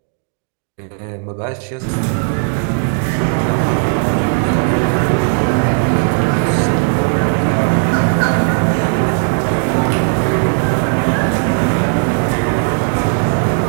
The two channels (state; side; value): silent; left; 56 dB below the other